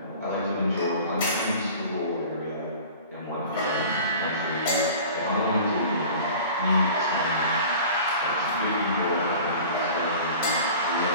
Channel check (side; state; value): both; inverted; correlation -0.41